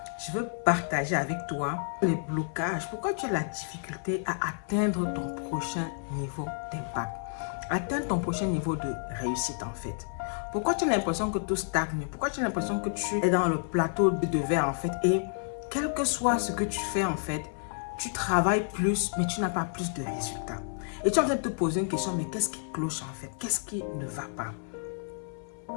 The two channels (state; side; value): silent; right; 55 dB below the other